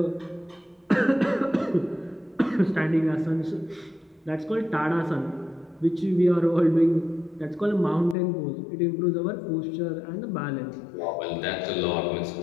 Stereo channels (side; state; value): right; drops out; at 8.2 s